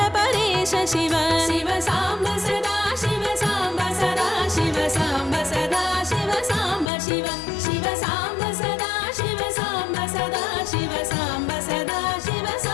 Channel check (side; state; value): right; drops out; at 6.9 s